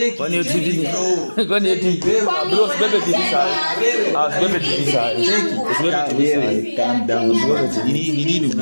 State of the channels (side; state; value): both; inverted; correlation -1.00